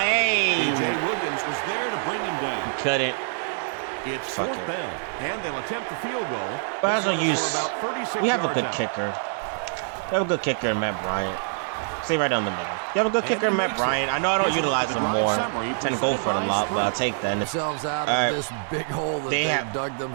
DJ Williams was there to bring him down. Couldn't. It's 4th down, and they'll attempt the field goal. But as we have a good kicker. We have a good kicker in Matt Bryant. Stay right down the middle. You have a good kicker in Matt Bryant. I know I don't utilize him more. Tend to go for it a lot, but I'll take that. They have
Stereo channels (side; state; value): left; silent; digital silence